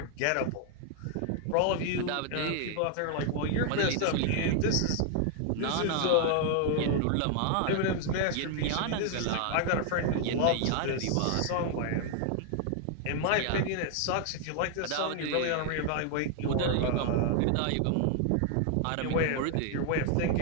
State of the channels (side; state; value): both; different; correlation 0.00